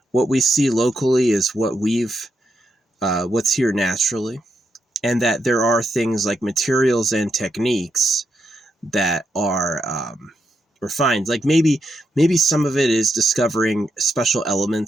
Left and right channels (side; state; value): both; normal; correlation 0.82